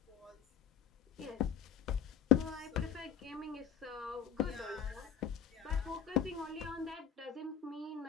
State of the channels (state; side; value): quieter; right; 8.6 dB